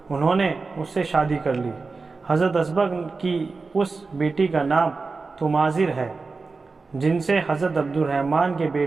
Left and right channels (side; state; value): left; quieter; 4.1 dB